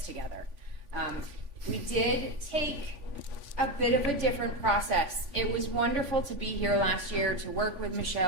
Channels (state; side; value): late; left; 3.5 ms